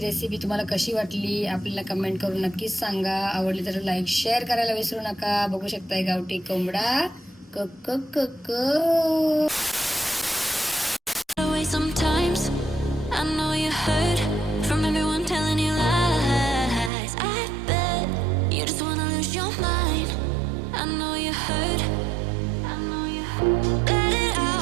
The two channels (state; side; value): drops out; left; at 16.9 s